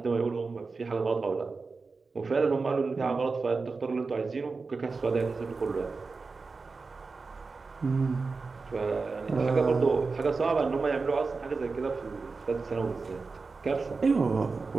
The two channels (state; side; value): quieter; left; 4.2 dB